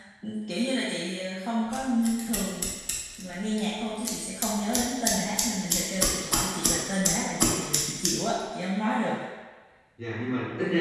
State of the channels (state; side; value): identical; both; correlation 1.00